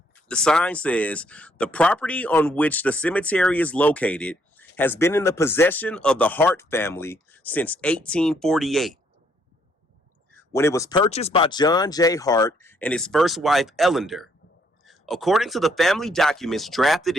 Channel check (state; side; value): normal; both; correlation 0.69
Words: The sign says, the property on which the cemetery is located has been in the possession of the Hart family since 1848, when it was purchased by John J. Hart and his first wife, Ellender. According to the family documents drafted